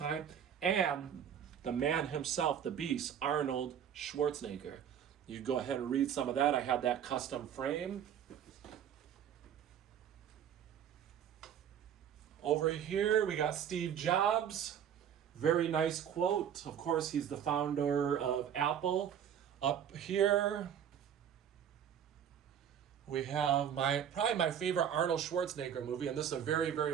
And the man himself, the beast, Arnold Schwarzenegger. You go ahead and read some of that. I have that custom frame. Over here we got Steve Jobs. Very nice quote. Of course, he's the founder of Apple. Up here we have probably my favorite Arnold Schwarzenegger movie, and this is a very,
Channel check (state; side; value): quieter; left; 8.9 dB